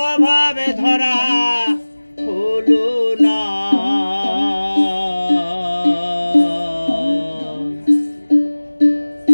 ধরা হলো না।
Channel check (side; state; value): both; inverted; correlation -1.00